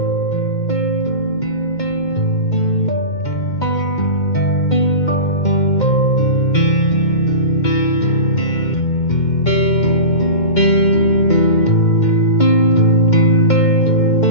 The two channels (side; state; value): right; late; 2.1 ms